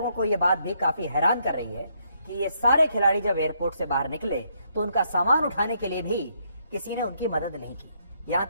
को यह बात भी काफी हैरान कर रही है कि ये सारे खिलाड़ी जब एयरपोर्ट से बाहर निकले तो उनका सामान उठाने के लिए भी किसी ने उनकी मदद नहीं की। यहां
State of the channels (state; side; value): inverted; both; correlation -0.73